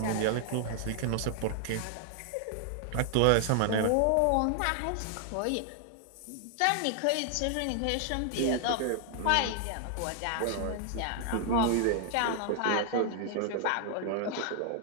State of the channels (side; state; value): both; different; correlation 0.00